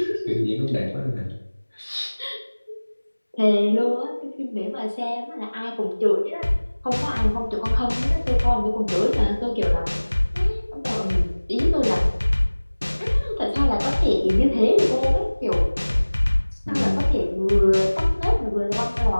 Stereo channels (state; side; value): inverted; both; correlation -1.00